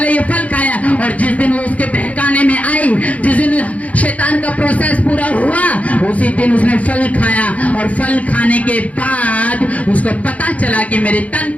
ये फल खाया। और जिस दिन वो उसके बहकाने में आई, जिस दिन शैतान का प्रोसेस पूरा हुआ, उसी दिन उसने फल खाया। और फल खाने के बाद उसको पता चला कि मेरे तन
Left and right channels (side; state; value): right; late; 0.068 ms